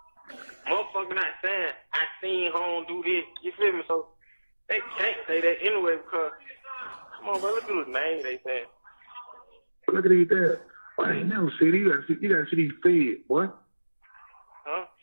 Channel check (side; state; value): both; inverted; correlation -1.00